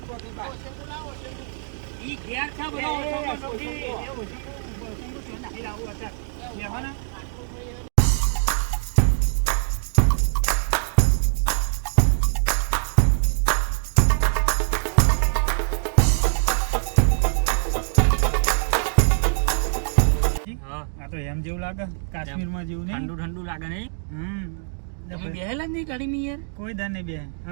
કોકે બા. ઈ ઘેર છે બધો એ, ઓછો ઓછો, ઓછો. ઓછો. એ ઓછો, ઓછો નાખી લાવું અત્યારે. બેહવાના? આ તો એમ જેવું લાગે કાશ્મીરમાં જેવું નહીં ઠંડુ ઠંડુ લાગે નહીં તમે બેહેલા જ નહીં ગાડીમાં યાર કોઈ દર નહીં બે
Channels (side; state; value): left; silent; 63 dB below the other